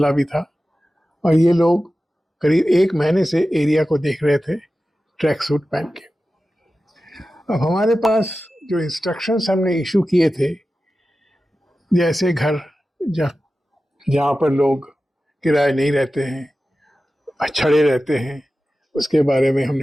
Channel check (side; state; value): both; normal; correlation 0.94